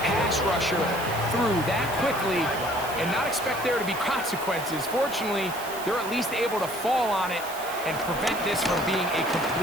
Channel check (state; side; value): noise; right; hiss, 13 dB below the sound